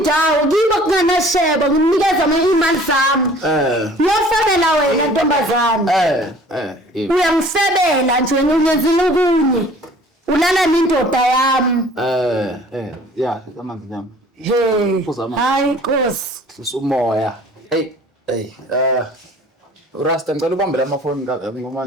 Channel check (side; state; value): both; normal; correlation 0.50